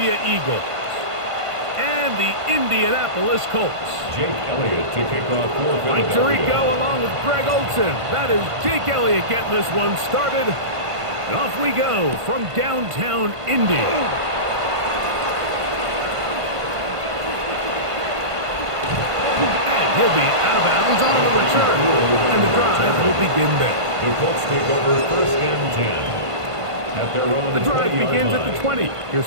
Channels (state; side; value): late; left; 1.5 ms